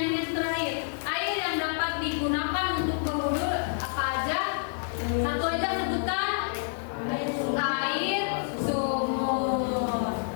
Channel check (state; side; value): silent; right; digital silence